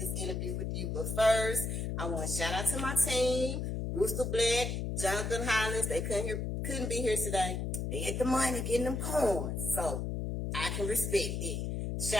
interview with you. But first, I want to shout out to my team, Rooster Black, Jonathan Hollins. They couldn't be here today. They get the money, getting them coins. So I can respect it.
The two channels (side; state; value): left; noise; hum, 2 dB below the sound